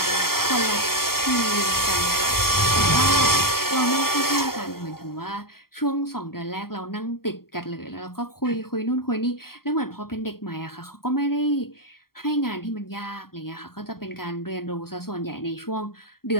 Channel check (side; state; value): right; late; 0.93 ms